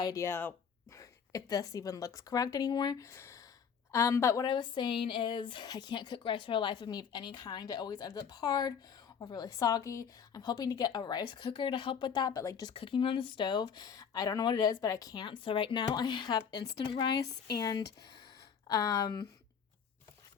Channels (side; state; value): right; quieter; 7.0 dB